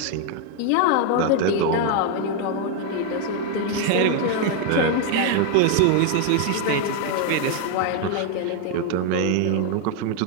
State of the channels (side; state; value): both; different; correlation 0.01